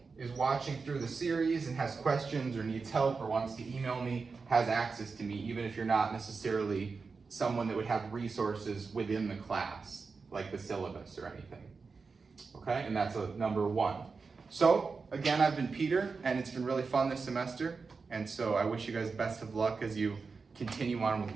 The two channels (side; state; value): left; quieter; 4.7 dB